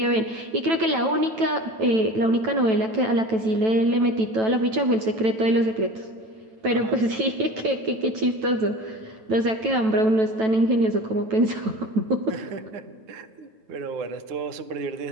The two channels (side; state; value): left; late; 9.1 ms